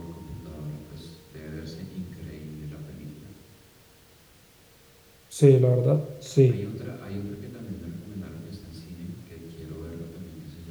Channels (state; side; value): identical; both; correlation 1.00